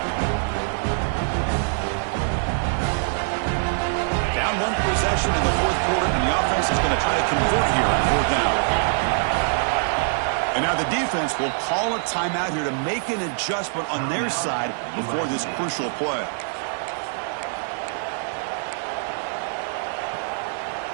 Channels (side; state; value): left; silent; 56 dB below the other